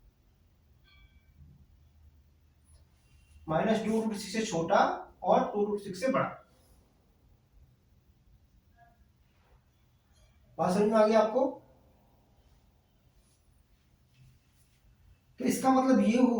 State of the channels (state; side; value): identical; both; correlation 1.00